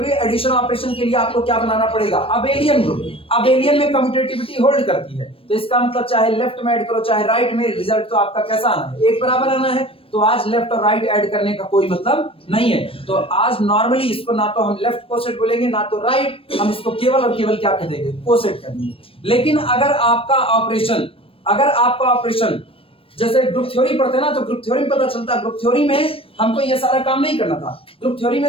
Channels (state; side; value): late; right; 0.27 ms